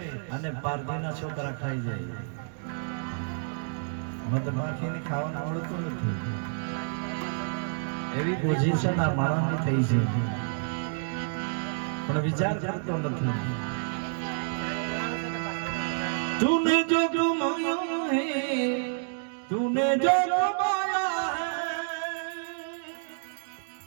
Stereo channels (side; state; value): left; silent; digital silence